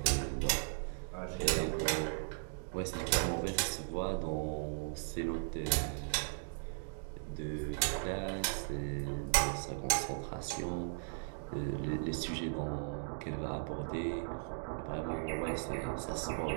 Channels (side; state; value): left; silent; digital silence